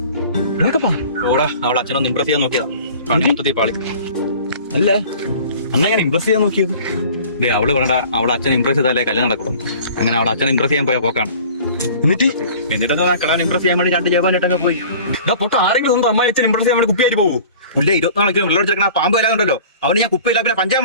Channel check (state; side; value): inverted; both; correlation -0.45